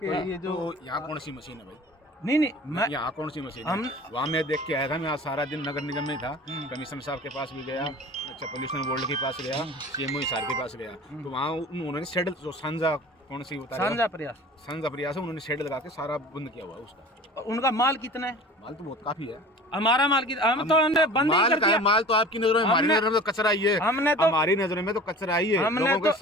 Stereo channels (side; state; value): both; normal; correlation 0.40